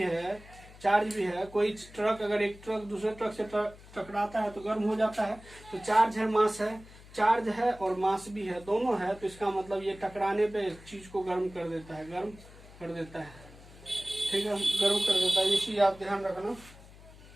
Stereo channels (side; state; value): left; noise; hum, 20 dB below the sound